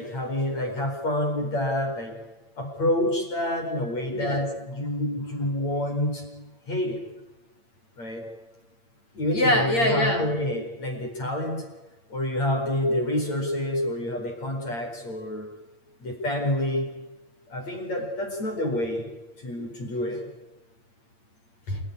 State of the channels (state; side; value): late; right; 8.7 ms